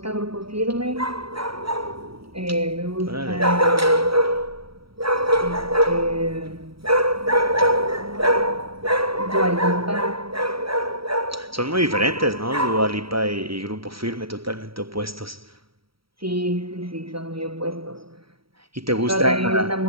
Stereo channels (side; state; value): left; late; 0.75 ms